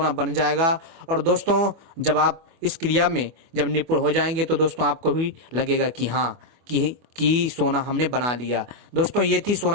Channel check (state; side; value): late; left; 24 ms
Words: बन जाएगा। और दोस्तों जब आप इस क्रिया में जब निपुण हो जाएंगे तो दोस्तों आपको भी लगेगा कि हाँ कि सोना हमने बना लिया। दोस्तों ये थी